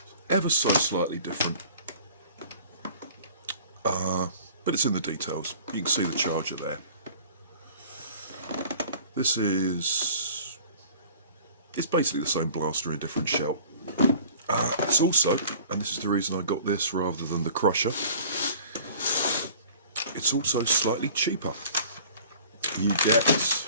Ever so slightly different. But it's in the details. You can see the charger there. This is... it's basically the same blaster in a different shell. It's also, and this is the reason I got this rather than the crusher, it's also slightly cheaper. You get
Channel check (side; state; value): both; inverted; correlation -0.47